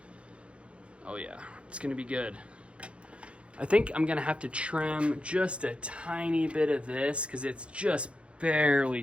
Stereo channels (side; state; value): left; late; 0.060 ms